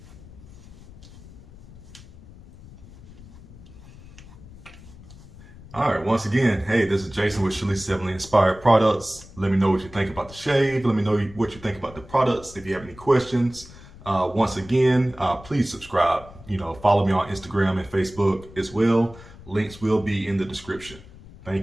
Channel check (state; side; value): noise; left; rumble, 19 dB below the sound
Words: All right, once again, hey, this is Jason with Chalises Heavenly Inspired Products. Let me know what you think about the shave. Let me know what you think about the products. If you have any questions, once again, please subscribe. Follow me on Instagram and Facebook as well. Links will be in the description.